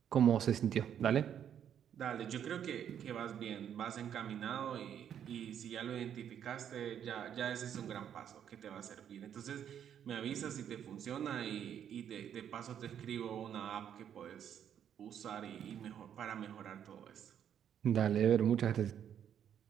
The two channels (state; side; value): quieter; left; 9.2 dB